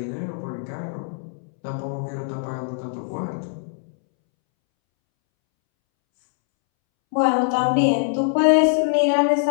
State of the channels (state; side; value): silent; right; 64 dB below the other